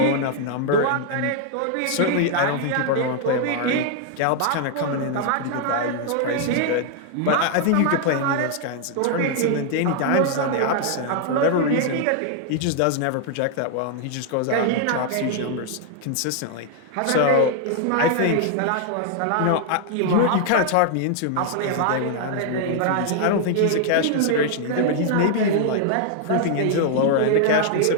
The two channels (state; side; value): different; both; correlation 0.00